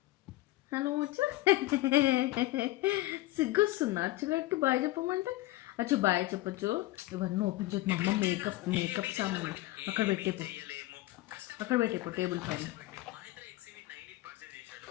హలో వచ్చు. సిగ్గొస్తున్నా అచ్చుగాడికి బాయ్ చెప్పమంటే అచ్చు బాయ్ చెప్పచ్చు. ఇవన్నీ ఓపెన్ చేసి మా అమ్మ మేకప్ సామాన్ అక్కడ పెట్టేపో టేబుల్ పైన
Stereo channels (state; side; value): quieter; right; 17.9 dB